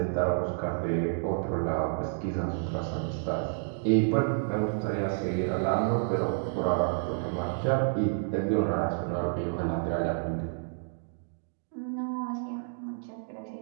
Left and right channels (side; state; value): left; silent; digital silence